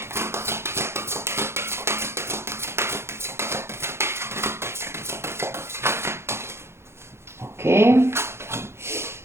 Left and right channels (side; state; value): left; late; 0.12 ms